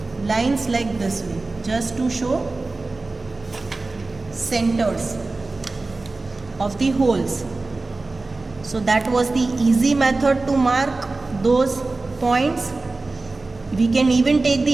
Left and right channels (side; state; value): left; quieter; 3.4 dB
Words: lines like this way, just to show centers of the holes. So that was the easy method to mark those points. We can even take